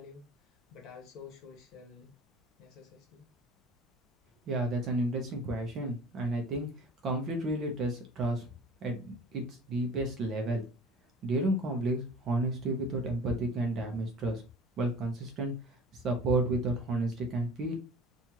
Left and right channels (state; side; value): normal; both; correlation 0.43